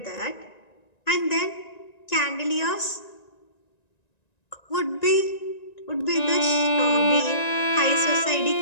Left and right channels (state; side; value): late; right; 1.9 ms